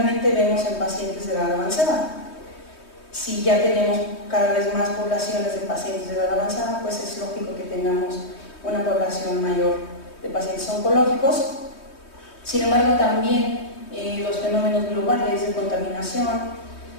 vemos en pacientes de edad avanzada. Si ya tenemos cada vez más poblaciones de pacientes de edad avanzada, pues es lógico que tengamos una población mayor de pacientes oncológicos. Sin embargo, también los fenómenos globales de contaminación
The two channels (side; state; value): right; late; 3.2 ms